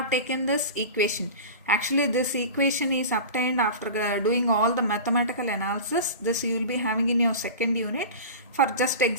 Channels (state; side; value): inverted; both; correlation -0.32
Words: taken this equation. Actually this equation is obtained after doing all the mathematical analysis. This you will be having in your second unit. For just